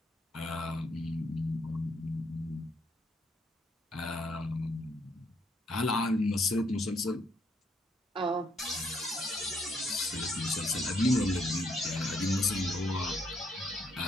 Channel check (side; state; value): both; normal; correlation 0.72